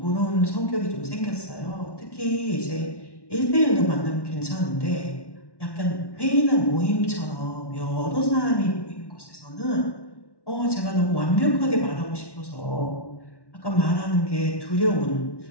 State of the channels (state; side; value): late; right; 1.1 ms